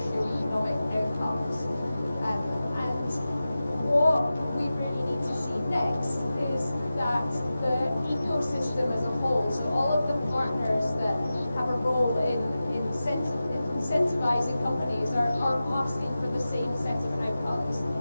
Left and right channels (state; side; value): inverted; both; correlation -0.94